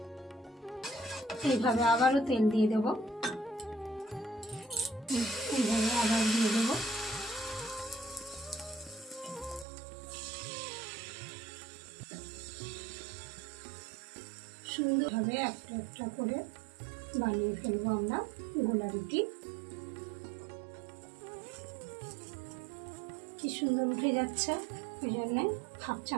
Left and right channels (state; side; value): drops out; left; at 9.7 s